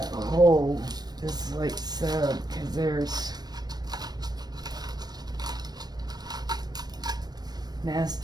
hole, just like so, because there's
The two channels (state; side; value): late; left; 0.19 ms